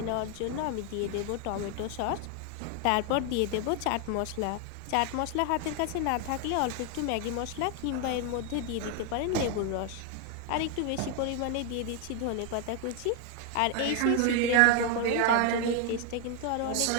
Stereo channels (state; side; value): different; both; correlation 0.01